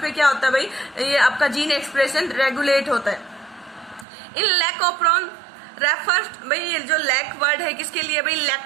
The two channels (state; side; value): drops out; left; at 4.0 s